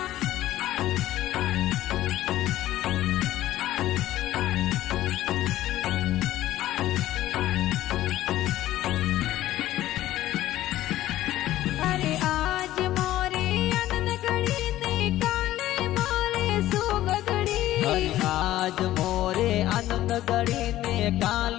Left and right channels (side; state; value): right; quieter; 14.4 dB